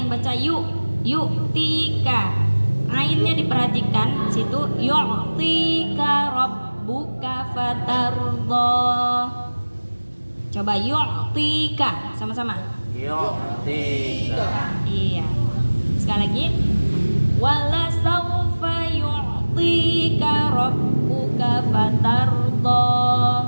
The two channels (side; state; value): both; inverted; correlation -1.00